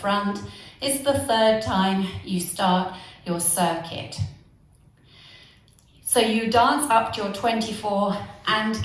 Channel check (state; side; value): identical; both; correlation 1.00